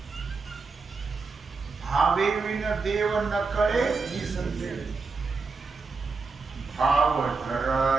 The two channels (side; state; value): left; quieter; 4.4 dB